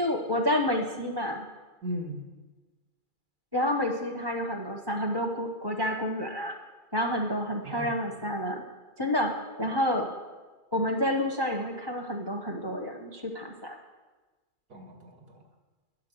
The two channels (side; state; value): left; late; 2.3 ms